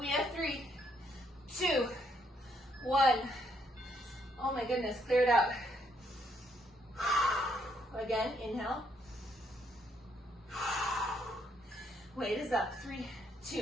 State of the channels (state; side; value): normal; both; correlation 0.72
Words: have 3, 2, 1. Oh my goodness, clear it out. Again, inhale. Weight is up. 3,